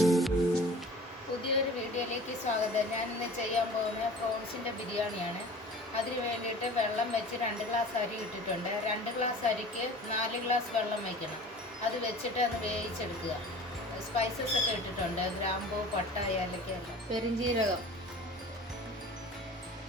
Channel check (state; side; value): normal; both; correlation 0.42